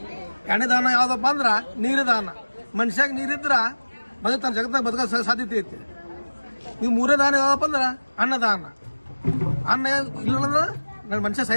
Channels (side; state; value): both; inverted; correlation -1.00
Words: ಎಣ್ಣೆ ದಾನ ಯಾವ್ದಪ್ಪ ಅಂದ್ರೆ ನೀರು ದಾನ. ಮನುಷ್ಯಾಗ ನೀರಿದ್ರ ಬದುಕ್ತಾನೆ, ಜಗತ್ತಾಗ ಬದುಕ ಸಾಧ್ಯತೆ ಐತಿ. ಈಗ ಮೂರೇ ದಾನ ಯಾವ್ದಪ್ಪ ಅಂದ್ರೆ ಅನ್ನದಾನ. ಅನ್ನ ಇಲ್ಲಂದ್ರೆ ನನ್ನ ಮನುಷ್ಯ